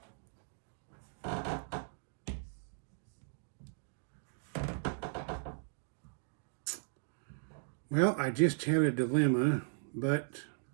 well, I just had a dilemma, but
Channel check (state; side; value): silent; left; digital silence